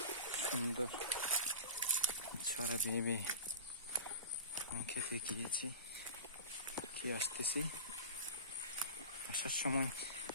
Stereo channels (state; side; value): inverted; both; correlation -0.32